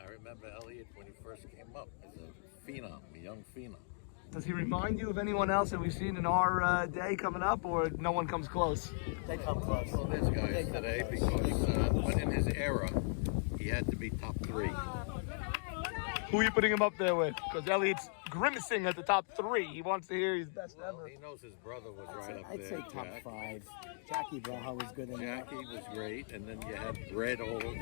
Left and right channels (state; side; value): silent; right; digital silence